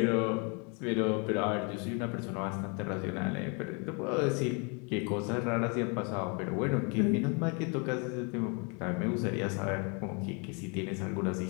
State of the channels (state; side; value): quieter; right; 34.7 dB